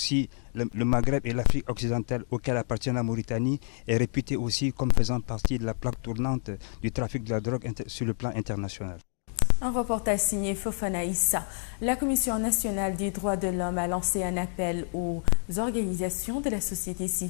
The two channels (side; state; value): right; silent; 59 dB below the other